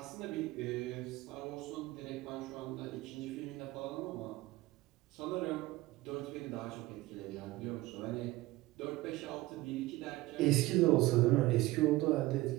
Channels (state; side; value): quieter; left; 18.8 dB